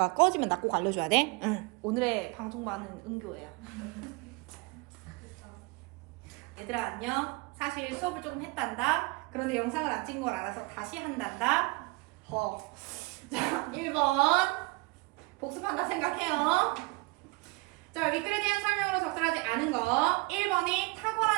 꺼지면 나 꼭 알려줘야 돼. 응. 오늘의 방송반은 은교예요. 얘들아 안녕. 사실 수업을 조금 했단다. 그런데 영상을 안 찍은 걸 알아서 다시 한단다. 자, 1번 복습한다 생각해요. 자, 윗글에 대한 설명으로 적절하지 않은 거. 1번이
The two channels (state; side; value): quieter; left; 26.2 dB